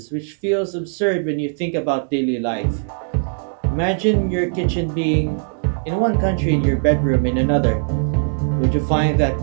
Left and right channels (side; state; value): left; silent; digital silence